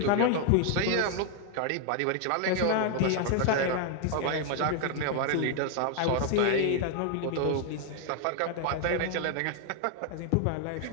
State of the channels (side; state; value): both; different; correlation 0.00